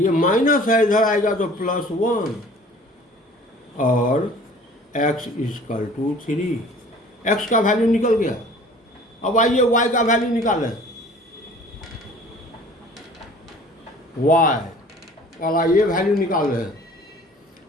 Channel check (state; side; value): normal; both; correlation 0.49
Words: माइनस है, इधर आएगा तो प्लस 1, और x इक्वल टू 3, x का वैल्यू निकल गया। अब आइए y का वैल्यू निकालें। y वाला ये वैल्यू निकाल रहे हैं,